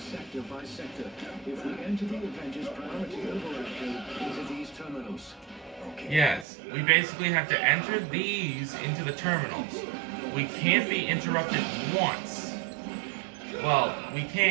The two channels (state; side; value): drops out; left; at 6.5 s